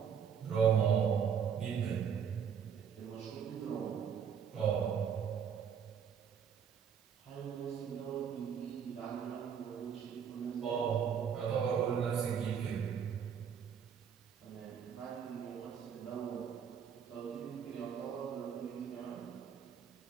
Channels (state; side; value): quieter; left; 7.6 dB